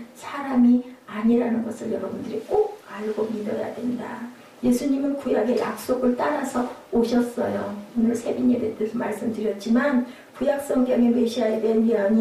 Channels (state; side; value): identical; both; correlation 1.00